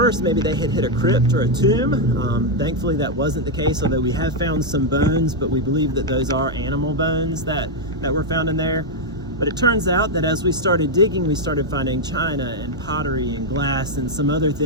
maybe they had hit a crypt or a tomb. Thankfully that wasn't the case, although we have found some bones, but we believe that those are animal bones that were found in there. But it turns out that as we started digging, we started finding china and pottery and glass and some other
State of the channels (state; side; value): normal; both; correlation 0.00